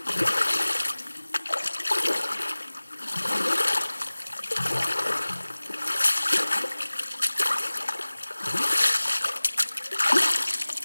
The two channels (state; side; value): inverted; both; correlation -1.00